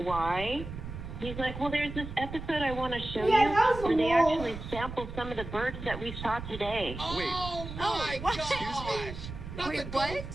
He's like, well, there's this episode I want to show you where they actually sample some of the birds that we saw today. Oh my what? gosh. Not Wait, the what?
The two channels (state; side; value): noise; right; rumble, 9 dB below the sound